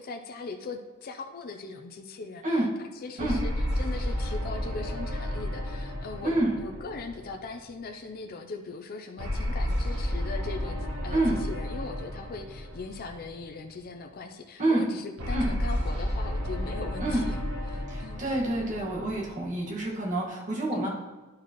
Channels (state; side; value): normal; both; correlation 0.77